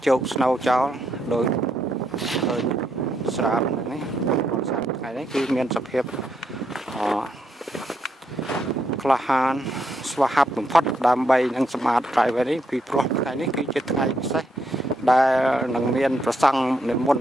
ជោគ snow ចោលដោយស្រាបនេះថ្ងៃនេះគឺមានសភាពក្លាហានស្វាហាប់បំផុតដើម្បីនឹងសម្អាត driveway នេះពីព្រោះថ្ងៃនេះគឺជាថ្ងៃពិសេសដែលនឹងមានប្រសង់និមន្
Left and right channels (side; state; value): both; normal; correlation 0.78